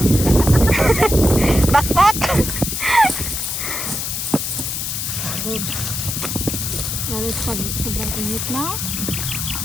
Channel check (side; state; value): left; noise; hiss, 3 dB below the sound